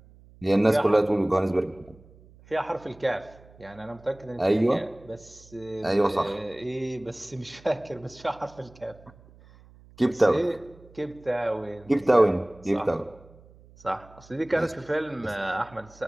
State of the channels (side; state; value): right; noise; hum, 24 dB below the sound